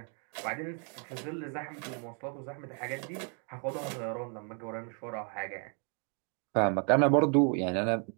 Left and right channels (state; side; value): quieter; left; 39.3 dB